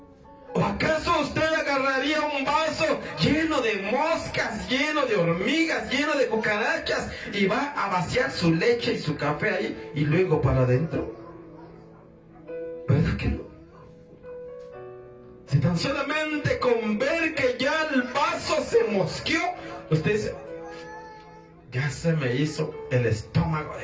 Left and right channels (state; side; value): identical; both; correlation 1.00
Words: ¿O acaso usted agarraría un vaso lleno de moscas, lleno de hormigas, lleno de cucarachas, y va a vaciar su leche y su café ahí y luego para adentro? ¿Verdad que no? Si tan solamente con ver que ya el vaso se mosqueó, usted dice: ya se me hizo el estómago,